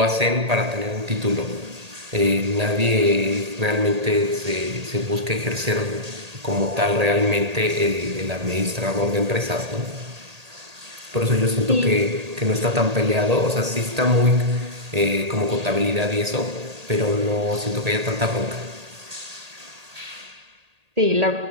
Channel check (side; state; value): left; late; 1.8 ms